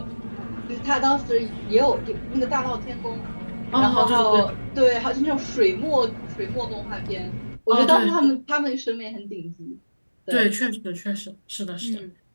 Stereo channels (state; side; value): inverted; both; correlation -1.00